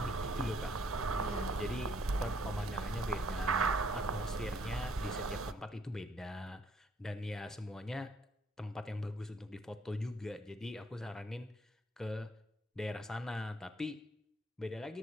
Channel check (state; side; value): normal; both; correlation 0.66